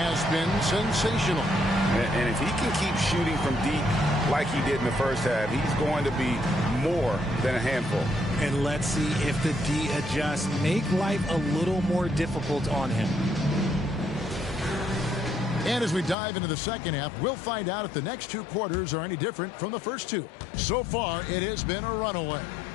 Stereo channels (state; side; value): drops out; right; at 16.2 s